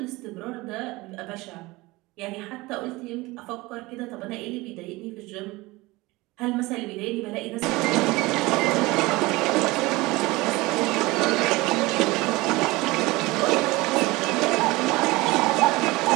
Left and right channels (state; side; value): quieter; left; 21.6 dB